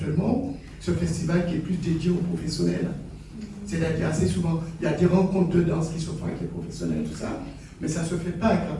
ce festival qui est plus dédié aux professionnels. C'est-à-dire assez souvent, il y a des rencontres de danse qui se font avec les professionnels, tout ça, mais ça ne se fait pas avec la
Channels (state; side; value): identical; both; correlation 1.00